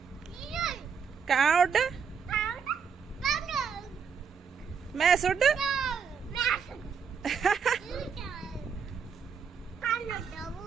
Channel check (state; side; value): quieter; left; 6.4 dB